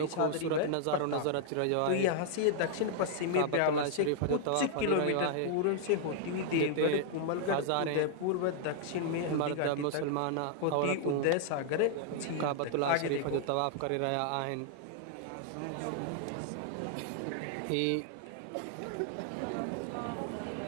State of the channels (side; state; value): both; different; correlation -0.01